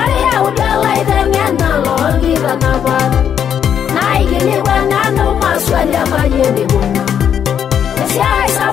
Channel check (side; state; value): right; quieter; 8.6 dB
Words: maswali mayeni buna Siai